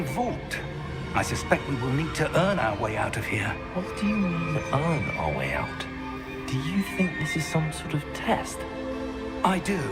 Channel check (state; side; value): identical; both; correlation 1.00